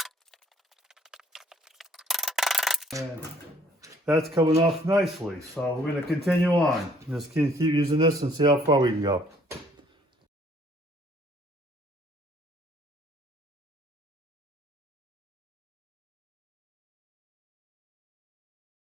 And that's coming off nicely, so we're going to continue on. Just keep using this and see how far we can go.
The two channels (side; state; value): both; normal; correlation 0.61